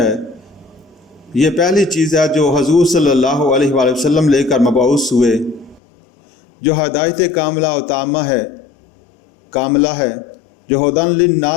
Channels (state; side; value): drops out; right; at 5.8 s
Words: یہ پہلی چیز ہے جو حضور صلی اللہ علیہ وآلہ وسلم لے کر مبعوث ہوئے، جو ہدایت کاملہ و تامہ ہے، کاملہ ہے، جو ہدن